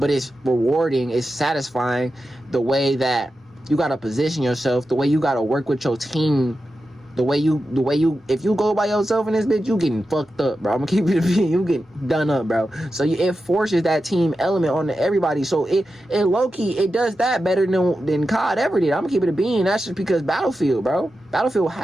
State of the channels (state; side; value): normal; both; correlation 0.91